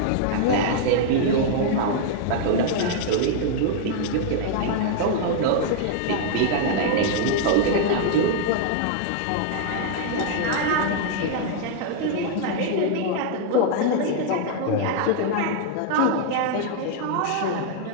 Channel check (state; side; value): different; both; correlation 0.00